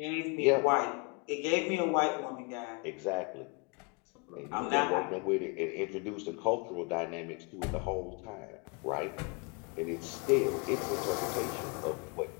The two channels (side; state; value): right; quieter; 32.4 dB